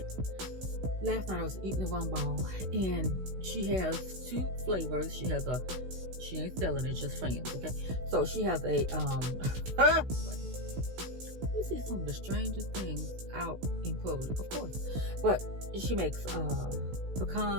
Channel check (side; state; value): left; late; 16 ms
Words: night I was eating a rum ball and she has two flavors. She ain't selling it, just friends, okay? So she has a you see some of the strangest things out in public, of course. But she makes